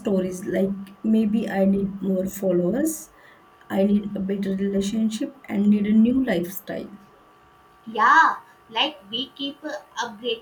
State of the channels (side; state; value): both; identical; correlation 1.00